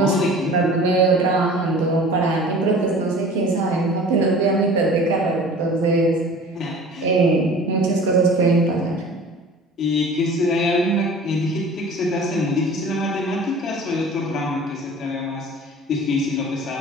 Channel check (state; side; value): normal; both; correlation 0.43